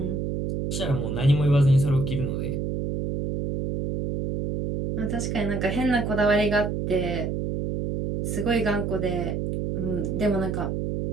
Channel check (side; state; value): right; noise; hum, 2 dB below the sound